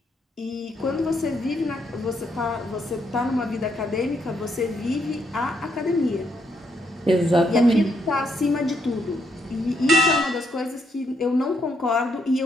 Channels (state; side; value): normal; both; correlation 0.75